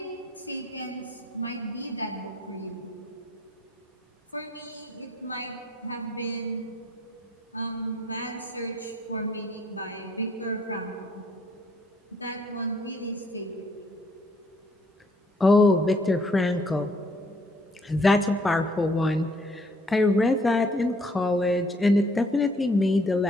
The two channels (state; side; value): normal; both; correlation 0.63